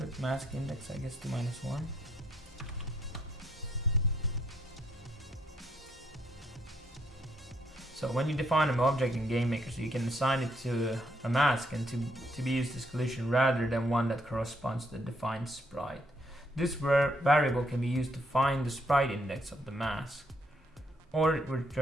mask index, I guess, to -1. So when you define an object in GameMaker, so you can assign it to a mask and to be used as collision rather than one that corresponds to the defined sprite. This variable can be used to find the sprite index of the mask, or it will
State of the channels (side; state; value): both; normal; correlation 0.72